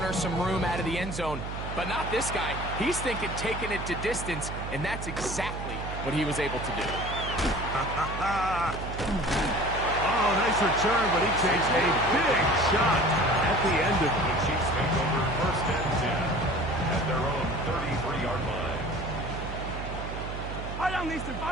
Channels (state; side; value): noise; right; hum, 7 dB below the sound